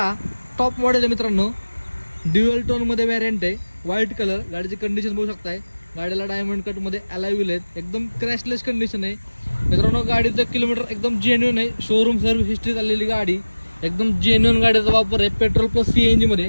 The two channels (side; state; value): both; inverted; correlation -1.00